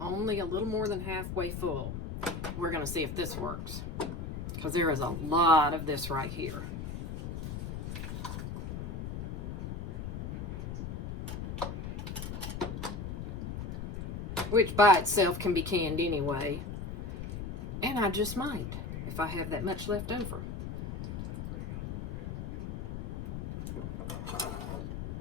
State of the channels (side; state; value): left; noise; rumble, 5 dB below the sound